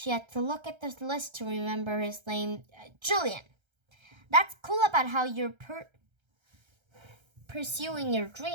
had to look at the list to remember his name. Julian. That's cool about how you're pursuing your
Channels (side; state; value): left; late; 1.3 ms